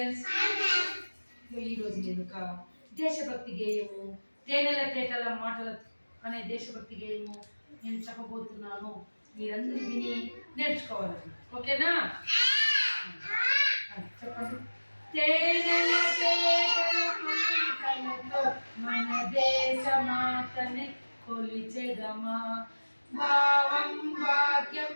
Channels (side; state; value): both; inverted; correlation -1.00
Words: ఈరోజు నేను ఒక దేశభక్తి గేయము తేనెల తేటల మాటల అనే దేశభక్తి గేయము నేను చెప్పబోతున్నాను. మీరందరూ విని నేర్చుకోవాలి. ఓకేనా? చెప్పండి. తేనెల తేటల మాటలతో మన దేశ మాతని కొలిచెదమా, భావం భాగ్యం